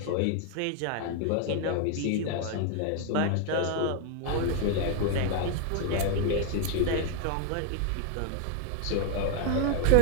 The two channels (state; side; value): different; both; correlation 0.00